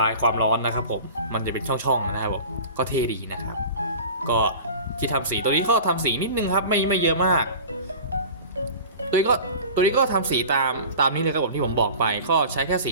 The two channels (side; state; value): both; inverted; correlation -0.37